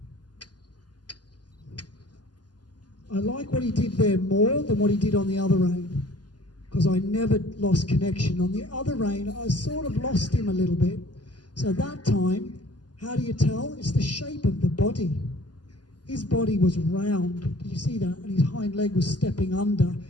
I like what he did there more than what he did on the other rein, because I never lost connection. On the other rein, I sort of lost him a little bit. So that time, how do you tell? It's the shape of the body. His body was round. Did you see that? And his hind leg was stepping under.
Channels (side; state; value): right; late; 0.70 ms